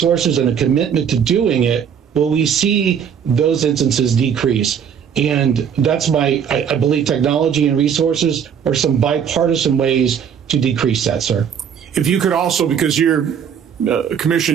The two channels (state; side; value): quieter; left; 7.8 dB